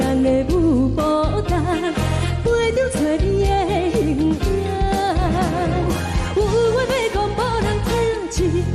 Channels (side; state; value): both; identical; correlation 1.00